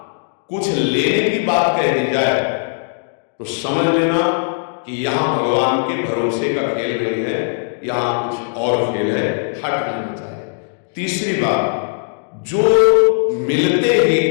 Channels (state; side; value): silent; right; digital silence